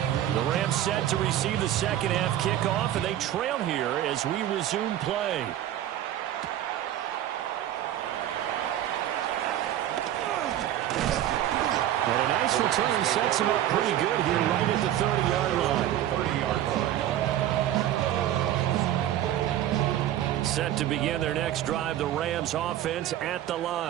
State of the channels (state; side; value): quieter; left; 12.2 dB